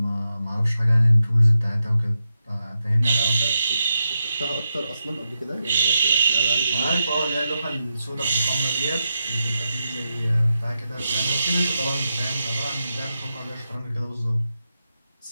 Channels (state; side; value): inverted; both; correlation -0.87